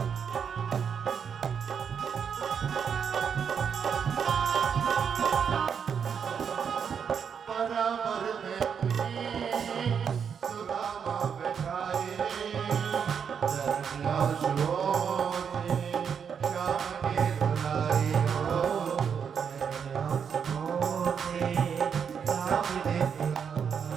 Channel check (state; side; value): quieter; left; 7.1 dB